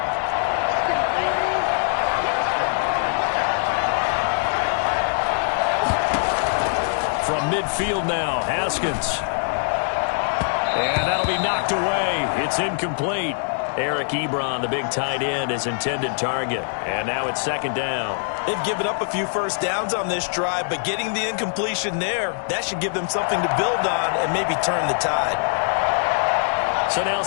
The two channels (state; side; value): silent; right; digital silence